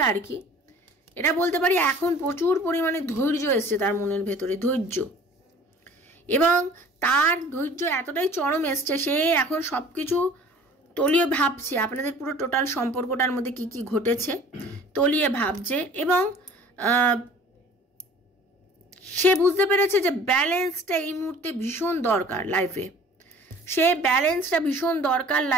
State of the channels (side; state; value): both; normal; correlation 0.48